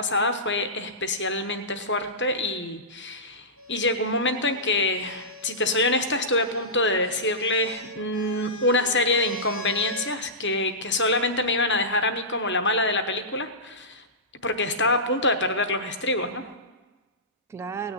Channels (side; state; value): both; normal; correlation -0.19